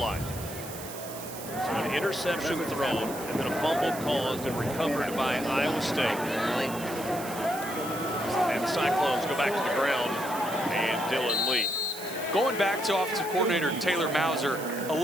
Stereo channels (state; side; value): noise; right; hiss, 12 dB below the sound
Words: So an interception thrown and then a fumble caused and recovered by Iowa State. And the Cyclones go back to the ground and Dylan Lee. Going back to offensive coordinator Taylor Mauser,